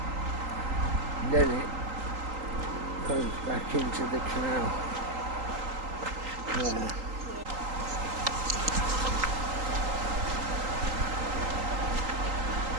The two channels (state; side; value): late; left; 3.8 ms